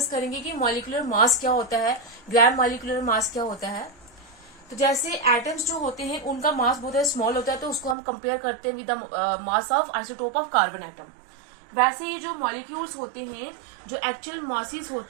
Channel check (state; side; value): drops out; left; at 8.0 s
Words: करेंगे कि मॉलिक्यूलर मास क्या होता है, ग्राम मॉलिक्यूलर मास क्या होता है। तो जैसे एटम्स जो होते हैं उनका मास बहुत स्मॉल होता है, तो उसको हम कंपेयर करते हैं with the mass of isotope of carbon atom. वैसे ही जो मॉलिक्यूल्स होते हैं, जो एक्चुअल मासेस